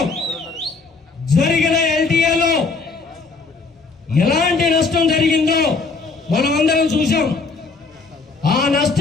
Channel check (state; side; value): quieter; right; 4.2 dB